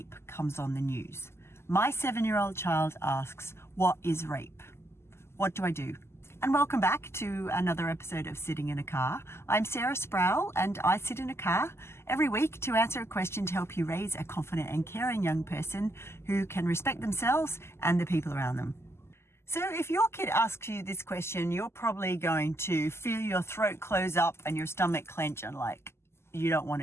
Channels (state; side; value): late; right; 0.12 ms